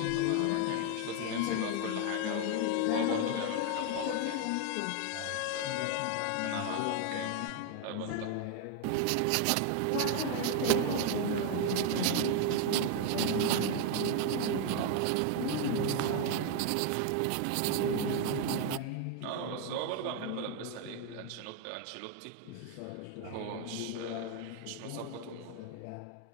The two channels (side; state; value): both; different; correlation 0.01